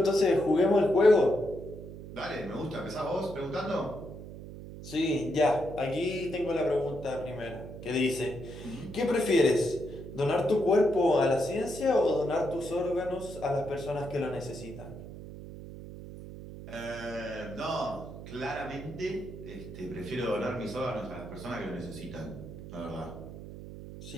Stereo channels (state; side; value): noise; right; hum, 12 dB below the sound